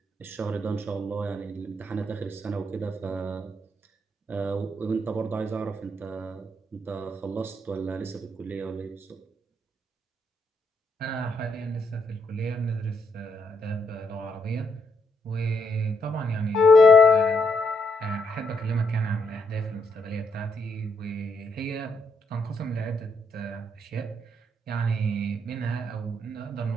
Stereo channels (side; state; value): both; normal; correlation 0.76